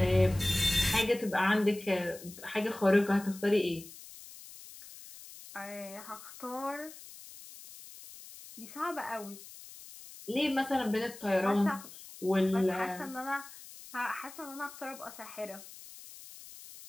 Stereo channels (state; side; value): noise; left; hiss, 16 dB below the sound